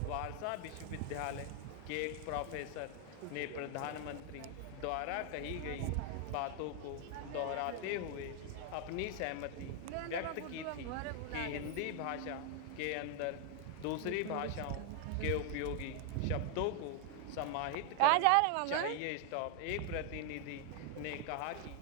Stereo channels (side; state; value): both; different; correlation 0.00